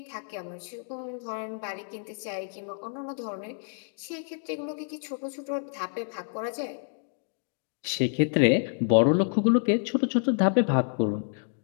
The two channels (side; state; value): right; silent; digital silence